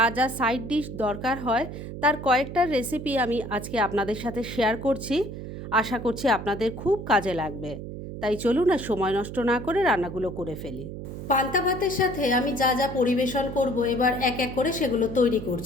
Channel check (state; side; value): noise; right; hum, 9 dB below the sound